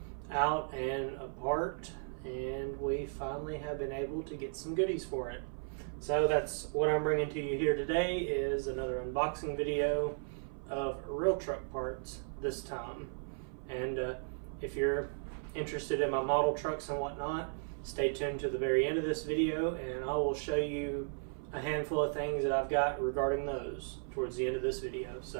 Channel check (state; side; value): silent; left; 54 dB below the other